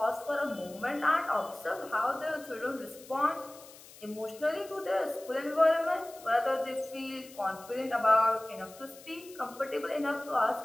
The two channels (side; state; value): left; noise; hiss, 20 dB below the sound